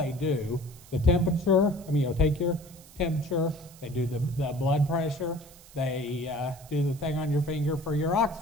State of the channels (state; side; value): noise; right; hiss, 22 dB below the sound